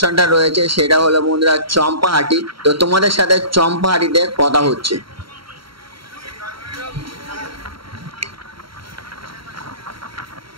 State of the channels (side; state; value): left; late; 0.74 ms